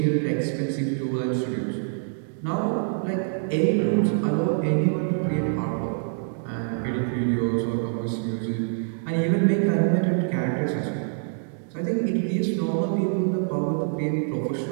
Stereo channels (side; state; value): left; silent; digital silence